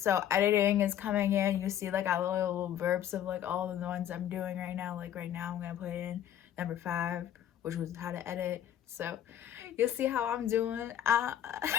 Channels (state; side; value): quieter; right; 10.6 dB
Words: editing is coming in. You see like a little verbs of like all the ones I'm doing right now. Like right now I'm gonna put in number 5, which was how to edit. So you'll see how I'm doing.